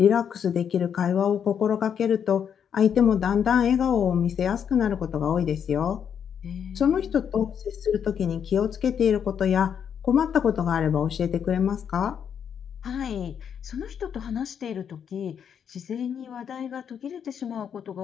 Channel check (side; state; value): right; quieter; 8.0 dB